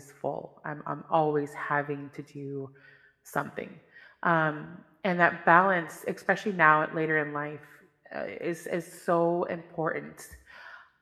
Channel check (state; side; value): identical; both; correlation 1.00